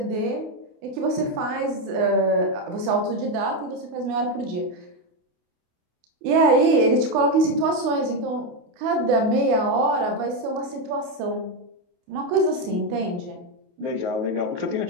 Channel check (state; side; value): late; left; 28 ms